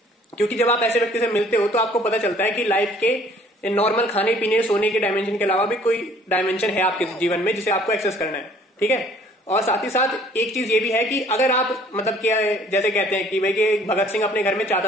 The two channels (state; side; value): normal; both; correlation 0.57